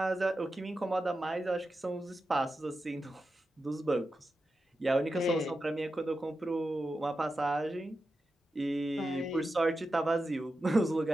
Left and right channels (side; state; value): both; normal; correlation 0.90